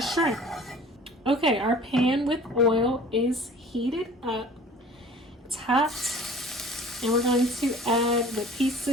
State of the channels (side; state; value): both; normal; correlation 0.46